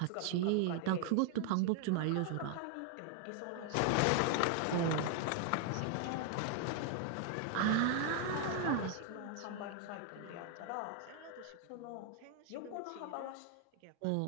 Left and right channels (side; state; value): both; different; correlation 0.00